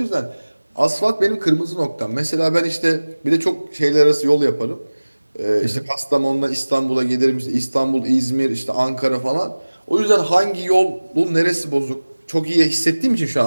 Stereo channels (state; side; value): inverted; both; correlation -1.00